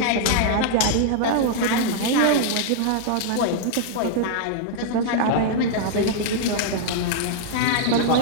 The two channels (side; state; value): both; different; correlation -0.01